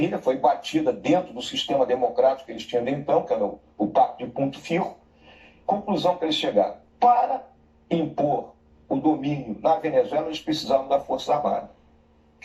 Foi batida dentro do sistema democrático que eles tinham de então, que era o Pacto de Punto Fijo. Conclusão que eles chegaram. Para impor o domínio na Venezuela, eles precisavam da Força Armada.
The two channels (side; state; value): both; identical; correlation 1.00